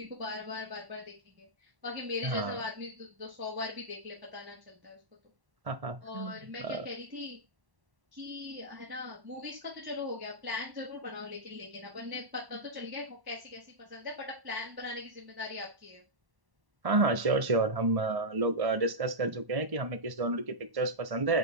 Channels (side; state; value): left; late; 1.1 ms